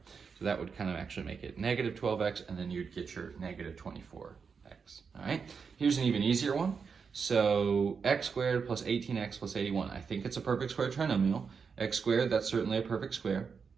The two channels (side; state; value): left; quieter; 5.8 dB